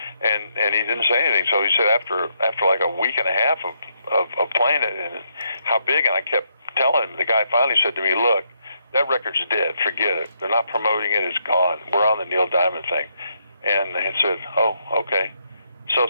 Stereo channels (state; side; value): inverted; both; correlation -0.76